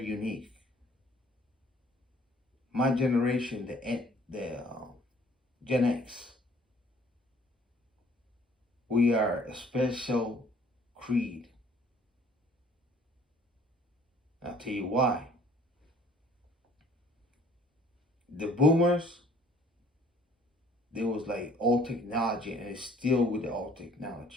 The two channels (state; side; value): normal; both; correlation 0.57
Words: unique. My generation, the Gen X, we are a special creed. I'll tell you why. The boomers, there was like old technology, and it's still with the old